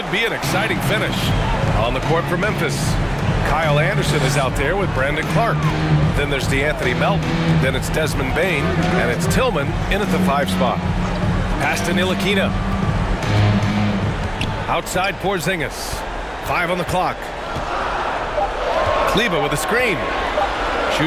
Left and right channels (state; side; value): identical; both; correlation 1.00